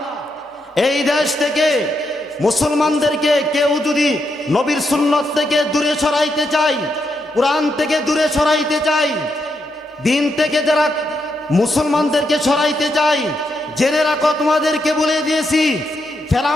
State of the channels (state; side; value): normal; both; correlation 0.81